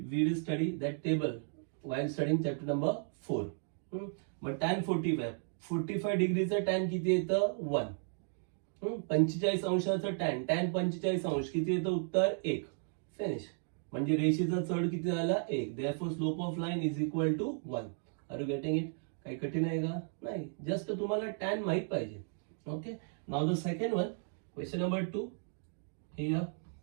will study that table while studying chapter number 4. मग tan 45 डिग्रीचं टॅन किती येतं, 1. 45 अंशाचं टॅन 45 अंश किती येतं, उत्तर 1. फिनिश. म्हणजे रेषेचा चढ किती झाला, 1. Therefore slope of line is equal to 1. Are you getting it? काही कठीण आहे का, नाही, जस्ट तुम्हाला टॅन माहित पाहिजे. Okay, now the second one, question number 2. Here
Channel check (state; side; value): silent; left; 55 dB below the other